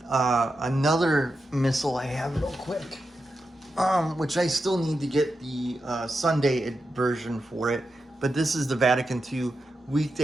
another Missal I have real quick, which I still need to get the Sunday version for it. But this is the Vatican II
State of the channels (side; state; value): both; normal; correlation 0.88